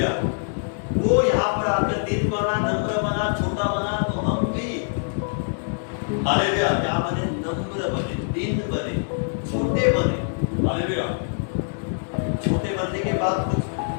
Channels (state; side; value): silent; right; digital silence